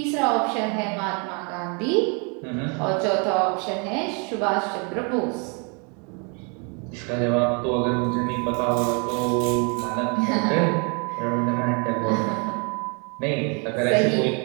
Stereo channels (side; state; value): left; quieter; 34.9 dB